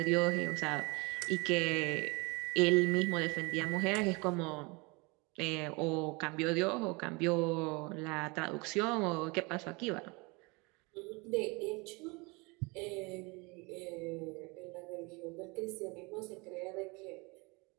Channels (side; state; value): left; quieter; 27.5 dB